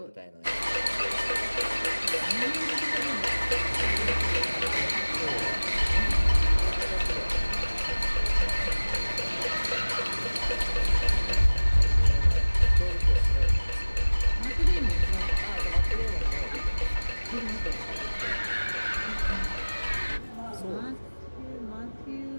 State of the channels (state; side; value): inverted; both; correlation -1.00